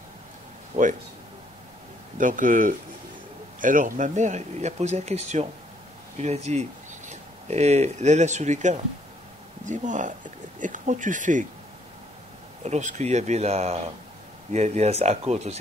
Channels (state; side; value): normal; both; correlation 0.67